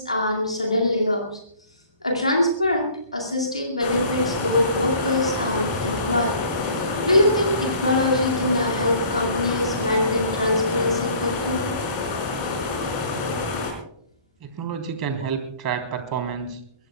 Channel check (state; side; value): inverted; both; correlation -0.52